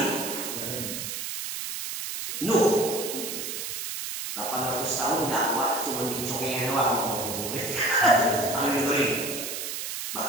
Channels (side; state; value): right; noise; hiss, 5 dB below the sound